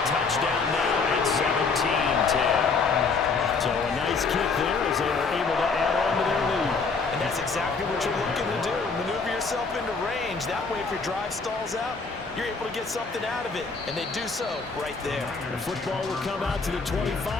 touchdown now at 17-10. So a nice kick there as they were able to add on to their lead. And that's exactly what you're looking to do. Maneuver yourself into range. That way, if your drive stalls out, you're able to get something out of it. And they do so right there. The football will come out to the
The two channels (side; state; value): right; quieter; 4.6 dB